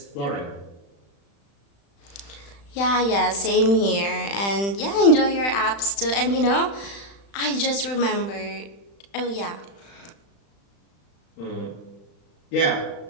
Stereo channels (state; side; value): late; right; 35 ms